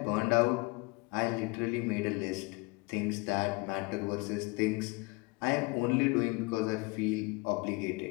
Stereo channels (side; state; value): right; quieter; 26.5 dB